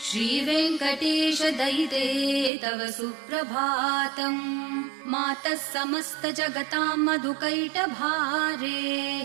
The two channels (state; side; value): drops out; left; at 2.5 s